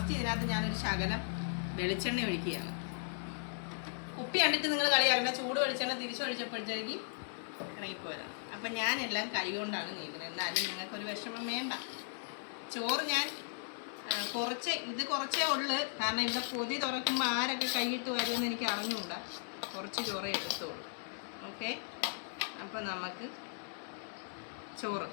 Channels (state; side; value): silent; right; digital silence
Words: ഇതിനകത്ത് ഞാനൊരു ശകലം വെളിച്ചെണ്ണ ഒഴിക്കുകയാണ്. കുപ്പി കണ്ടിട്ട് നിങ്ങൾ കളിയാക്കണ്ട. ചൂട് വെളിച്ചെണ്ണ തിരിച്ചൊഴിച്ചപ്പോഴത്തേക്ക് ഇറങ്ങിപ്പോയതാണ്. അപ്പം ഞാനെല്ലാം കൈ കൊണ്ടാണ് നീക്കുന്നത്. എന്നാലും നിങ്ങൾക്കൊരു വിഷമം വേണ്ട. ചോറ് ഞാൻ കുറച്ചേ ഉള്ളു. കാരണം ഇവിടെ പൊതി തുറക്കുമ്പോൾ ആരൊക്കെ കൈയിട്ട് വരുമെന്ന് എനിക്ക് അറിഞ്ഞുകൂടാ. കുറച്ച് ചോറേ എടുത്തോളൂ. ഓക്കെ, അപ്പോൾ നമുക്ക് ചോറ്